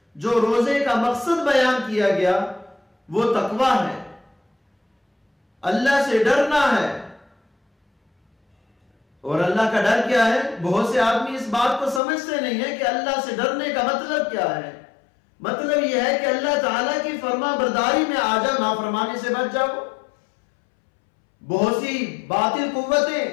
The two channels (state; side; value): drops out; right; at 12.0 s